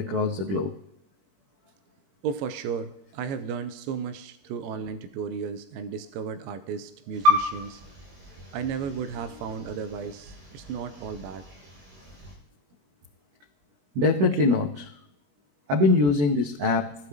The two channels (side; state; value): left; late; 21 ms